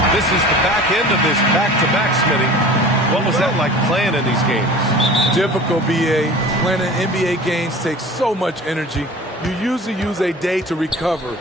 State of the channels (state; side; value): normal; both; correlation 0.41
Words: This is the back end of this back-to-back, Smitty. What was that like playing in these games? Difficult, BA. Playing in NBA games takes so much energy. You usually use a day to recover,